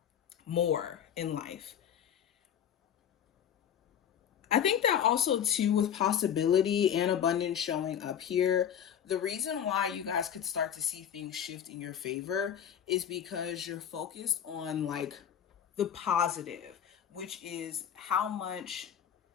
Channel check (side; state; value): right; quieter; 9.1 dB